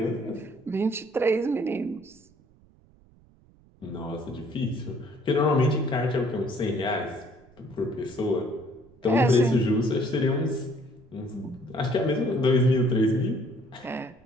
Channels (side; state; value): right; noise; rumble, 28 dB below the sound